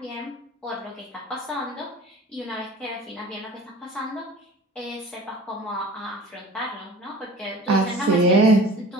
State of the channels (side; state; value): both; normal; correlation 0.42